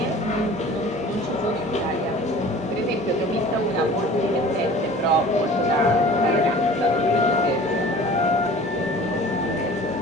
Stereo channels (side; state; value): both; normal; correlation 0.44